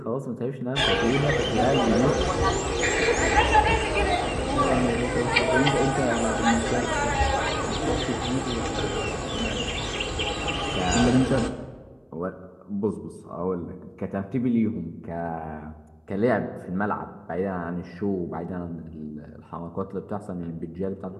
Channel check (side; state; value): both; identical; correlation 1.00